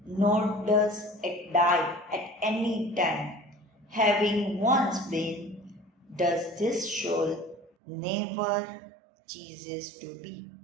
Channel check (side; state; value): left; drops out; at 7.7 s